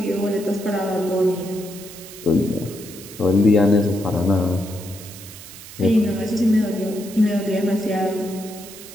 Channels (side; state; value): right; noise; hiss, 15 dB below the sound